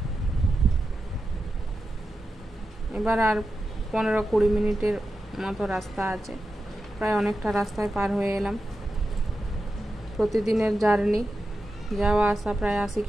এবার আর 15-20 মিনিটের মতো রাস্তা আছে, প্রায় অনেকটা রাস্তায় পার হয়ে এলাম। প্রতিদিনের জার্নি, যাওয়া আসা প্রায় 80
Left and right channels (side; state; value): both; normal; correlation 0.91